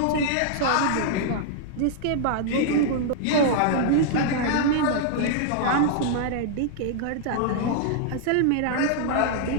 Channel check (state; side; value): different; both; correlation -0.01